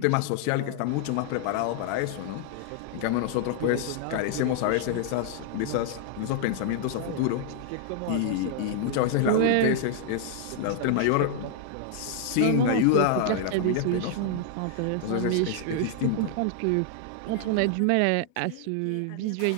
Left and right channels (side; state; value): both; different; correlation -0.01